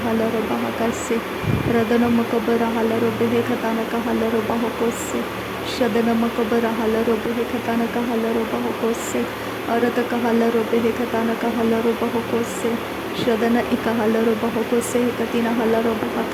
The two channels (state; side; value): identical; both; correlation 1.00